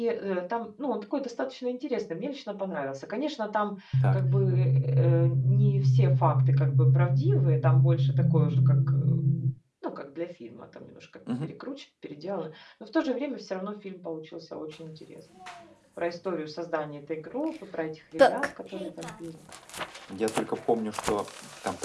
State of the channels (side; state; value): both; identical; correlation 1.00